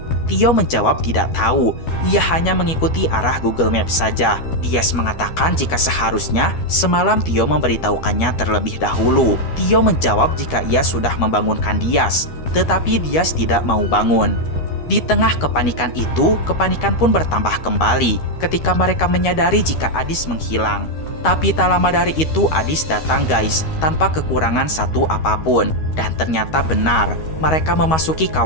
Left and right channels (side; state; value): right; late; 13 ms